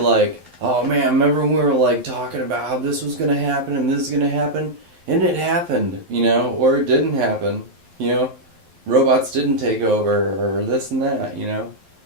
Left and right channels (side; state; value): left; late; 11 ms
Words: oh man, remember when we were like talking about how this was going to happen and this is going to happen? And it happened, or it didn't happen, robots didn't take over, or this and that,